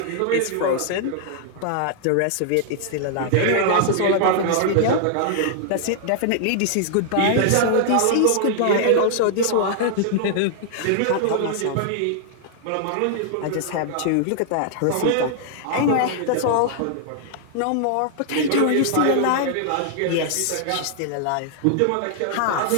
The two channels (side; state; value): both; different; correlation -0.01